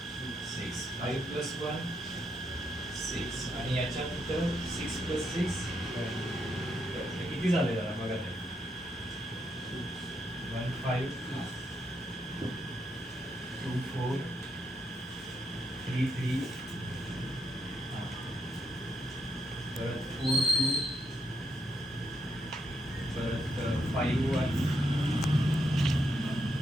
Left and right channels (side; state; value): both; normal; correlation 0.78